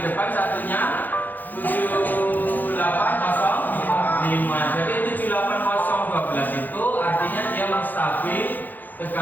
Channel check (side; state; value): right; late; 0.085 ms